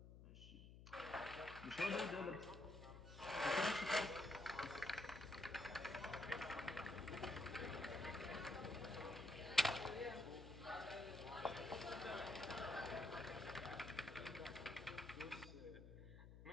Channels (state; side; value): noise; left; hum, 14 dB below the sound